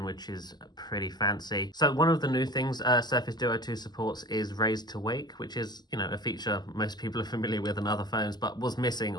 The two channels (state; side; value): late; right; 0.20 ms